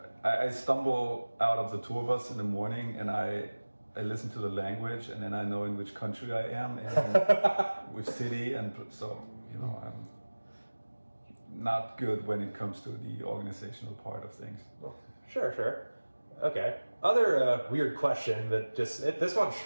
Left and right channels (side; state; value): both; inverted; correlation -1.00